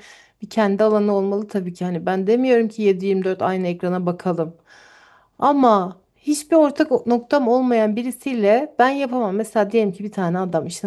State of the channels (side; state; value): both; identical; correlation 1.00